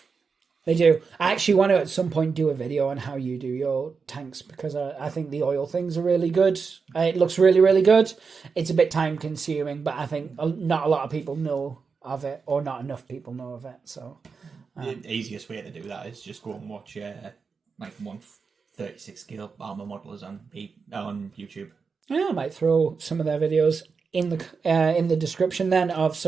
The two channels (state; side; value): quieter; left; 5.2 dB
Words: They do. I actually want to at some point do a video on how you do your tanks, because I think the oil things are really good. It looks really, really good. It's a bit time consuming, but I think not a lot of people know of it, or not enough people know of it. So the easiest way to do that is just go and watch like 136 scale armor modelers on YouTube. Yeah, I might throw some of their videos in the description then of